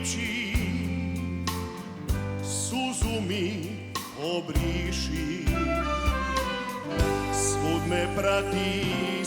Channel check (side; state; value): both; identical; correlation 1.00